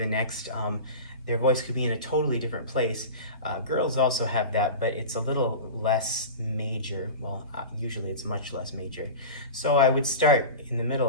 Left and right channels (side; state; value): both; inverted; correlation -0.30